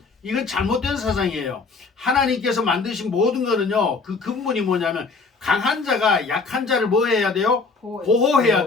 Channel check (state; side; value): quieter; right; 4.3 dB